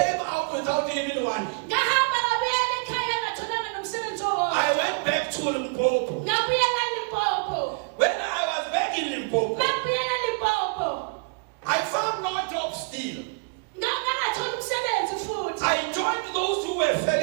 out without even one. I went back to Limpopo. When I was back in Limpopo, I found no job still. I joined those who were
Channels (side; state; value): left; quieter; 34.8 dB